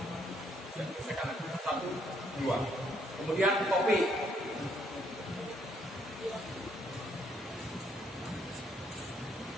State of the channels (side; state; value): both; normal; correlation 0.70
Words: 2. Kemudian topi.